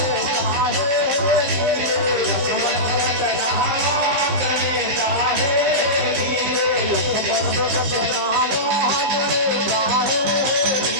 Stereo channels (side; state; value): left; late; 15 ms